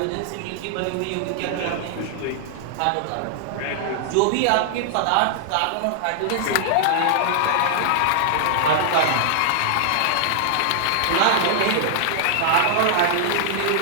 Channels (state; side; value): different; both; correlation -0.01